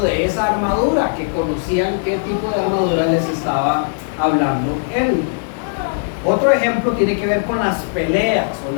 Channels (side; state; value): right; silent; digital silence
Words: de esa armadura, que conocían qué tipo de armadura les estaba hablando él. Otro ejemplo tiene que ver con las peleas o